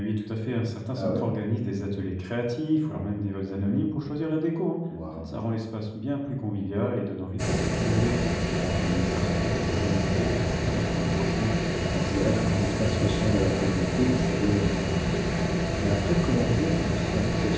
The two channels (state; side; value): identical; both; correlation 1.00